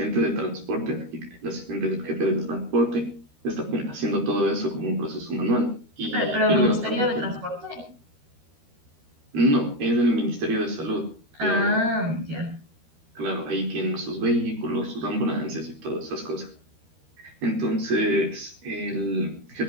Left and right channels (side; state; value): left; late; 13 ms